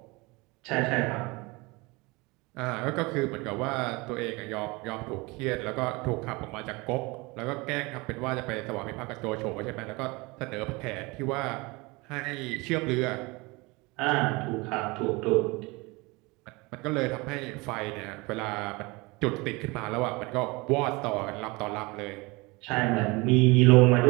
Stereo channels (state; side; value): quieter; left; 24.8 dB